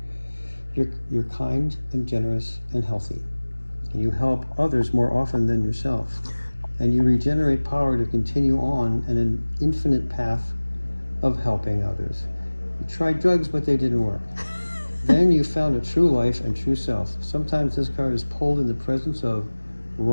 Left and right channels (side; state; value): both; inverted; correlation -1.00